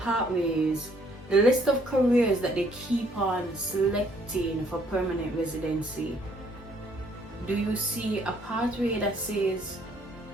the list of careers that they keep on selecting for permanent residency, do you see a pathway that says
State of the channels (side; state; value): both; normal; correlation 0.64